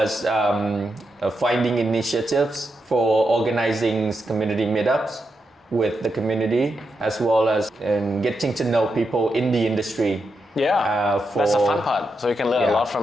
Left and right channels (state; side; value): normal; both; correlation 0.85